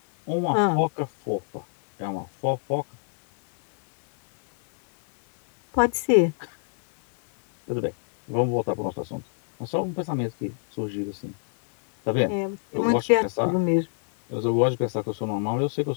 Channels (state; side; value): silent; right; 62 dB below the other